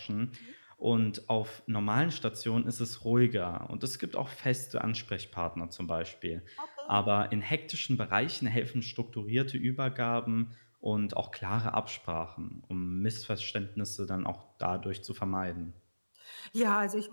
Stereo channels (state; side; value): inverted; both; correlation -1.00